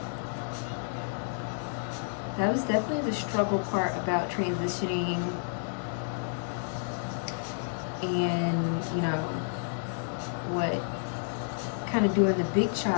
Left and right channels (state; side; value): silent; right; digital silence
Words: That was definitely the struggle part about transitioning and, you know, what kind of doing the big